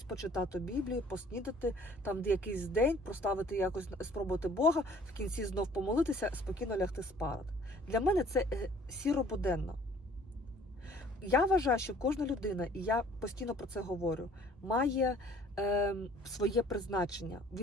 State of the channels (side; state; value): both; normal; correlation 0.54